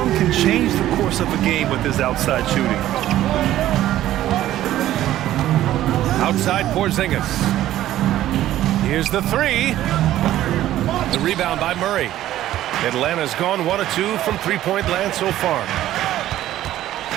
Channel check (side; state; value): left; quieter; 13.5 dB